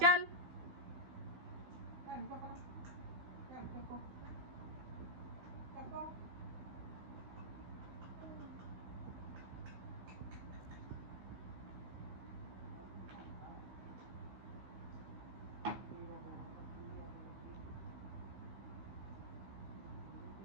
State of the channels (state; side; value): late; left; 16 ms